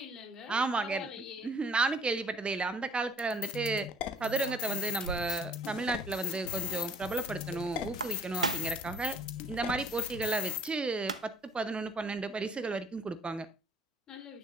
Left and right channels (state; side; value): normal; both; correlation 0.57